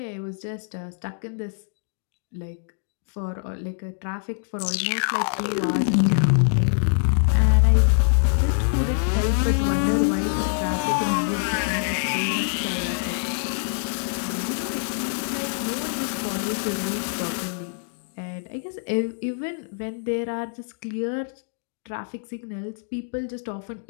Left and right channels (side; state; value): right; silent; digital silence